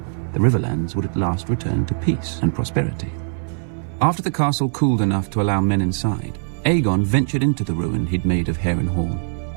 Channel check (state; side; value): silent; left; 59 dB below the other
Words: the Riverlands would at last return to peace and prosperity. After the castle cooled enough to allow men inside, Aegon ventured into the ruin he'd made of Harrenhal.